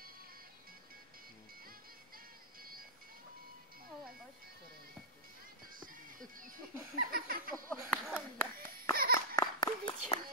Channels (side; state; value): both; normal; correlation -0.17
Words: Ovo je baš.